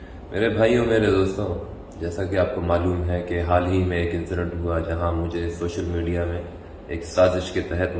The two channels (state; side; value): identical; both; correlation 1.00